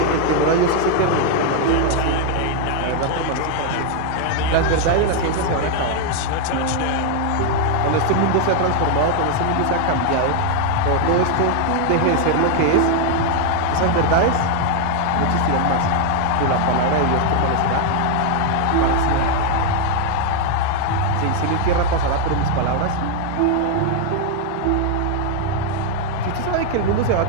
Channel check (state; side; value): different; both; correlation 0.00